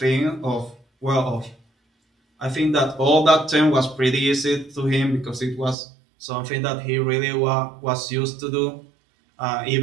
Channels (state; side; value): drops out; left; at 5.8 s